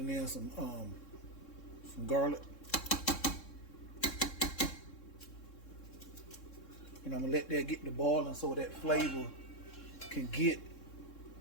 in some garlic. And I'm gonna let that get to boiling so that flavor can get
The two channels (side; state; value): right; late; 3.7 ms